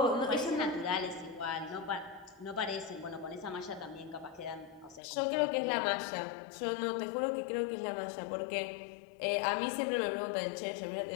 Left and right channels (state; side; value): drops out; right; at 5.0 s